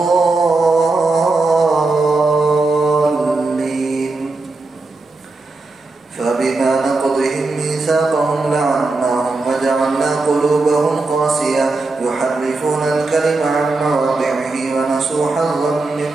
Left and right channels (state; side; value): quieter; left; 3.4 dB